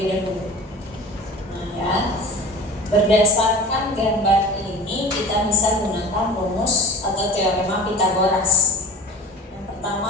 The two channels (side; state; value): both; normal; correlation 0.38